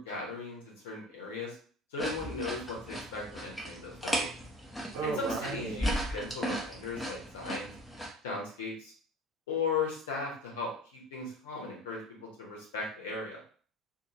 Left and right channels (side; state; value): both; normal; correlation 0.38